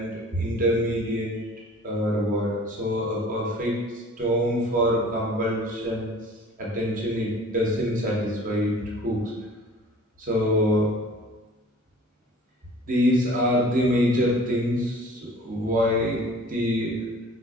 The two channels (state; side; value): normal; both; correlation 0.47